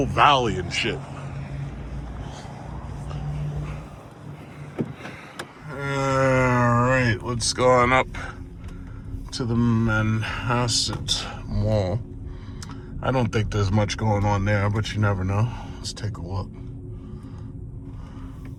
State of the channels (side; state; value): both; identical; correlation 1.00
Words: valley and shit. Alright, let's go on up to the Manhasset Mall. I don't think there's much going on there, but you never know. Let's take a look.